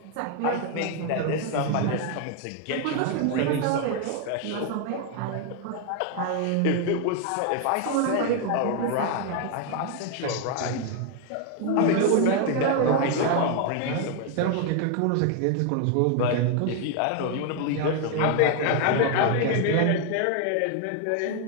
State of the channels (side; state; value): both; different; correlation 0.00